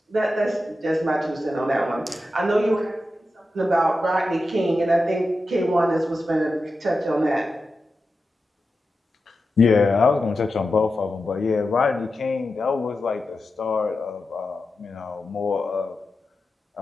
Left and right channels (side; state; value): both; normal; correlation 0.91